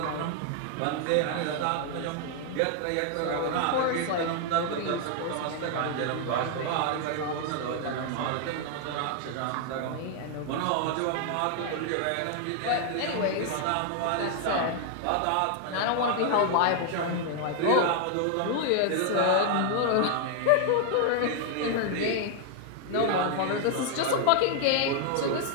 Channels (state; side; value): different; both; correlation 0.00